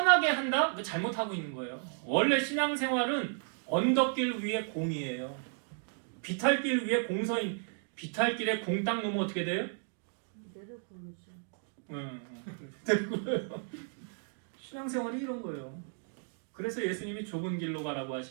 한다? 그거 잘못하고 있는 거예요. 원래 신앙생활은 언덕길 위에 공이에요. 비탈길 위에 공서인. 비탈길에 공 딱 놓으면 어떻게 돼요? 내려보내죠. 되고요. 신앙생활이 이런 거예요. 그래서 예수님이 좁은 길로 가라고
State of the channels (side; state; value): left; silent; 55 dB below the other